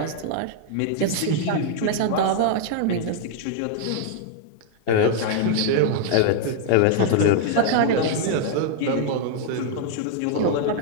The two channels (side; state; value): both; different; correlation -0.01